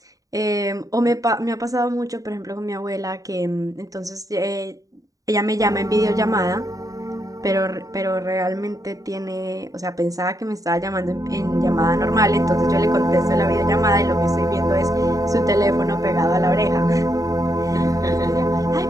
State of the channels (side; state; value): left; late; 0.17 ms